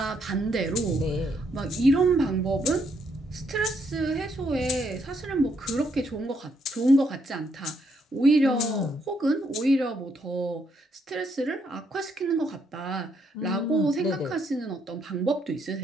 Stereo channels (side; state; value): both; normal; correlation 0.74